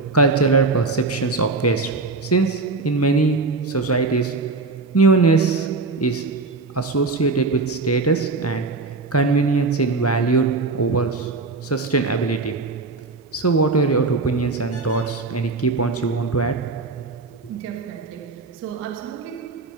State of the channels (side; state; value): left; quieter; 3.8 dB